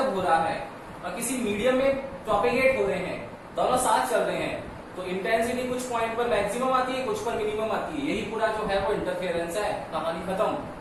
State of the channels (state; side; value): identical; both; correlation 1.00